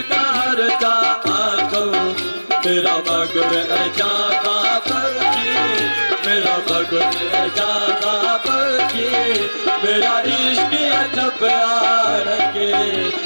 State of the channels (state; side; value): inverted; both; correlation -1.00